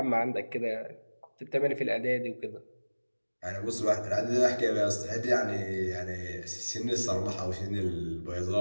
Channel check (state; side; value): inverted; both; correlation -1.00